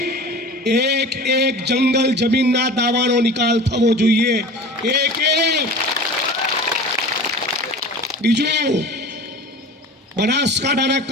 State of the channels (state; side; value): normal; both; correlation 0.37